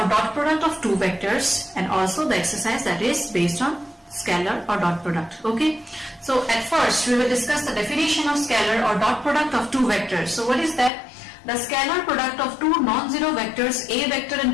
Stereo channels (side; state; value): right; drops out; at 10.9 s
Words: dot product of two vectors and also the exercise that is based on scalar or dot product. Okay, so at first we will discuss the definition of scalar or dot product of two vectors. So what is that? The scalar product of two non-zero vectors A vector and